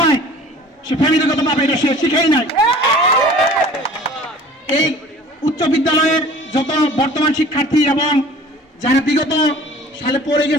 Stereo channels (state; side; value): normal; both; correlation 0.46